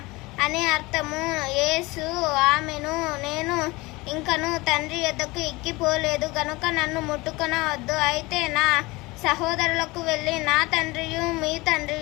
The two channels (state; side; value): quieter; right; 22.5 dB